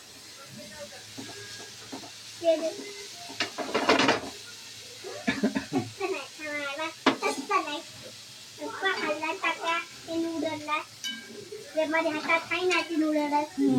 माझ्या हातात काही नाही ती नूडल्स.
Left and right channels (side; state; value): both; identical; correlation 1.00